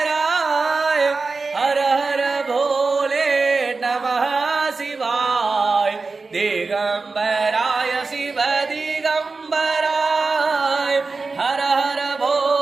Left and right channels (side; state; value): left; quieter; 4.1 dB